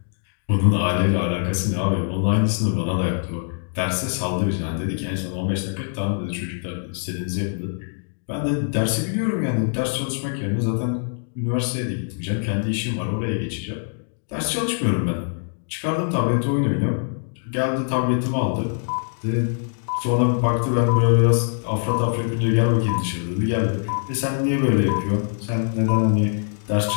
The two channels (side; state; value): right; silent; digital silence